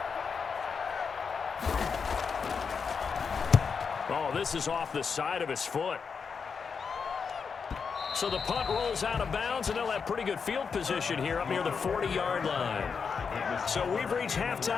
Oh, this is off the side of his foot. So the punt rolls out of bounds, and they'll have pretty good field position here up near the 40-yard line. So we've reached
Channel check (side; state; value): right; quieter; 5.8 dB